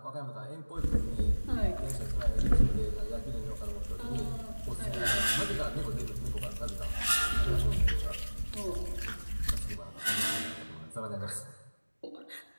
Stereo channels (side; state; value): both; inverted; correlation -1.00